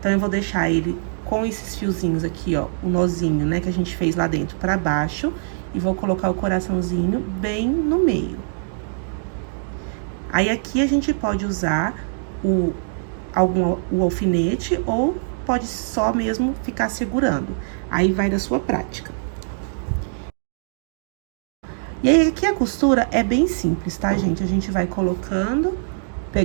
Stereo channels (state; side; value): silent; left; digital silence